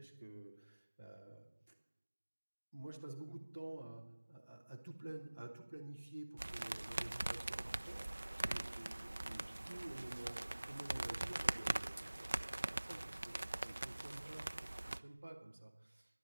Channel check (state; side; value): inverted; both; correlation -1.00